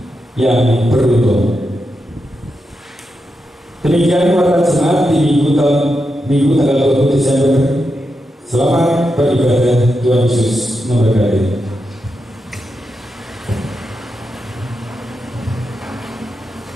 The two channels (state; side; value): normal; both; correlation 0.87